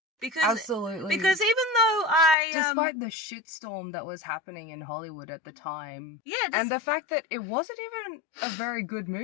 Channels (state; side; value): drops out; right; at 2.4 s